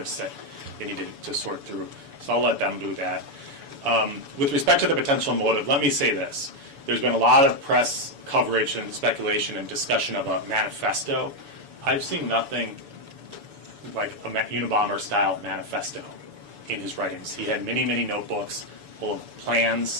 that they need to sort through. So I'll let them do that. With respect to the potential motive, let me say this. There's been a lot of press coverage and speculation and discussion of a manifesto. I've seen nothing like a Unabomber-style manifesto in his writings. He had many, many notebooks full of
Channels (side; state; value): left; late; 7.0 ms